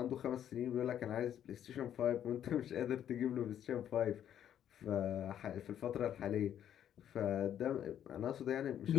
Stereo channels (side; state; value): right; quieter; 10.1 dB